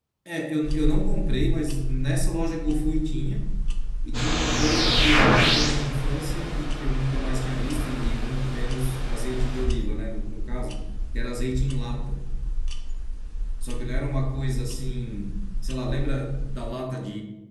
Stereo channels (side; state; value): both; identical; correlation 1.00